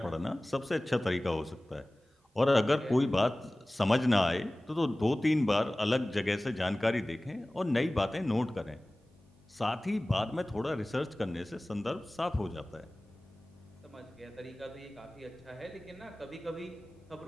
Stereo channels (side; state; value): both; normal; correlation 0.98